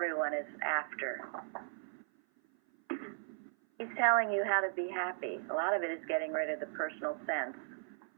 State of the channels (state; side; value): silent; left; 53 dB below the other